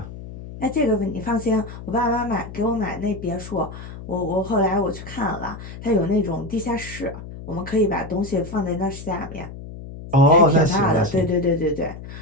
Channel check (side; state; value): left; noise; hum, 12 dB below the sound